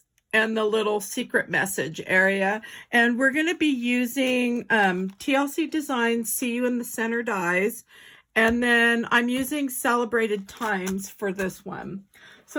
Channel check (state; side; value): identical; both; correlation 1.00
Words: and the little secret message area. And we're going to be using TLC Designs See in the center dies. And then I'm using Celebrated Times for this one.